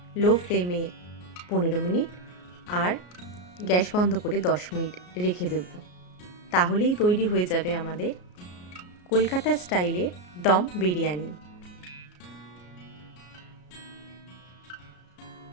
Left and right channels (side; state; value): right; late; 33 ms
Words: লো ফ্লেমে 15 মিনিট আর গ্যাস বন্ধ করে 10 মিনিট রেখে দেব। তাহলেই তৈরি হয়ে যাবে আমাদের কলকাতা স্টাইলের দম বিরিয়ানি।